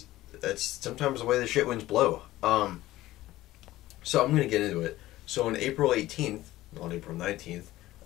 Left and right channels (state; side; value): quieter; right; 16.2 dB